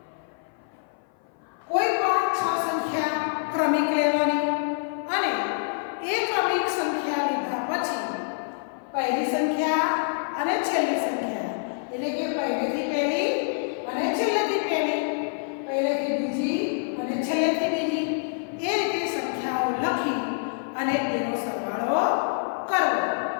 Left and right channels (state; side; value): silent; right; 56 dB below the other